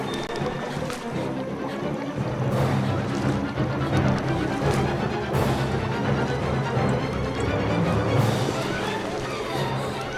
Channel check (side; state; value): both; identical; correlation 1.00